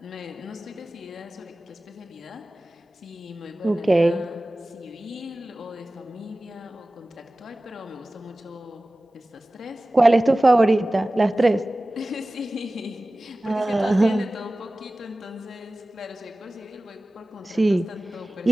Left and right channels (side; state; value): both; normal; correlation 0.97